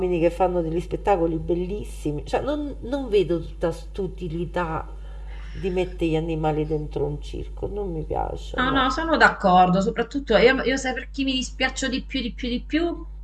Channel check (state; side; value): identical; both; correlation 1.00